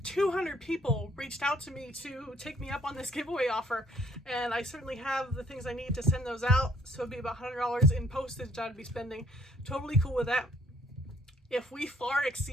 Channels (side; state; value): both; normal; correlation 0.62